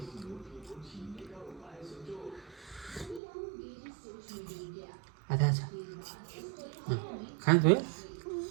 आथा छ खान्छ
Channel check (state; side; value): drops out; left; at 3.2 s